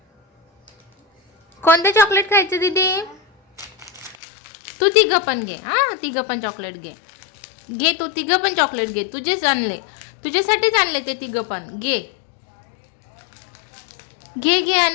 कोणतं चॉकलेट खायचं दीदी? तू तिघं पण घे. हां, तिघं पण चॉकलेट घे. घे तू तिघं पण चॉकलेट घे. तुझेच आणले, तुझ्यासाठीच आणले ते तिघं पण. घे घे घे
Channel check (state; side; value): drops out; right; at 4.2 s